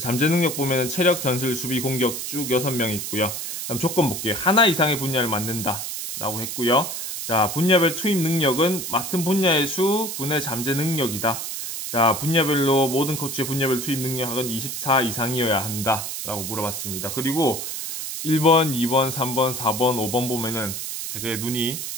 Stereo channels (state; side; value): noise; right; hiss, 5 dB below the sound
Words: 잠재 능력 보면은 체력, 전술, 수비, 공격 쭉 6명 있고요. 그럼 조건 볼게요. 하나 이상의 분야를 맡는다 라고 했고요. 자, 분야별 투입 능력은 맡은 분야의 수 분의 잠재 능력이다. 자, 분야별로 모든 코치의 분야별 투입 능력은 24 이상이어야 한다 라고 물어봤습니다. 그리고 1번, 2번, 3번, 4번, 5번 보면은 되게 눈이